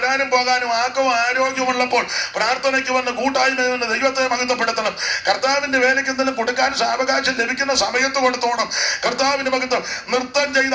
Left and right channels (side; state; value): both; identical; correlation 1.00